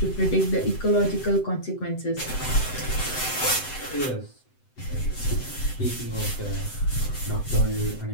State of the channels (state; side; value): late; right; 7.8 ms